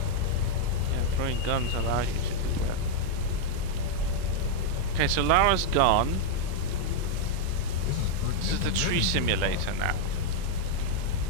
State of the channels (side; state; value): both; different; correlation -0.01